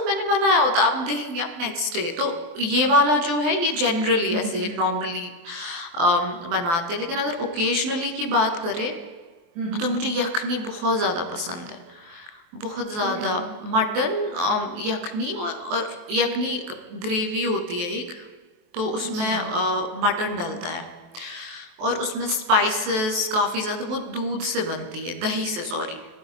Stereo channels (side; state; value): left; late; 24 ms